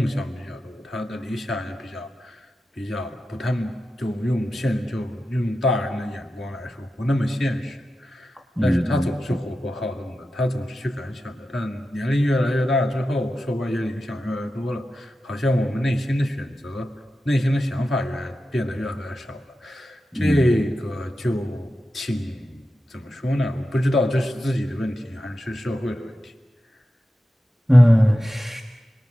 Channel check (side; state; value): both; normal; correlation 0.91